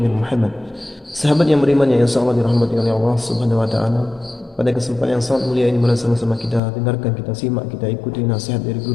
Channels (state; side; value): drops out; right; at 6.6 s